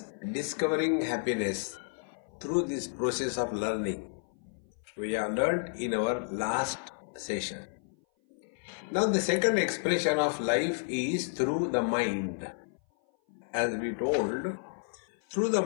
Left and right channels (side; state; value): right; silent; 56 dB below the other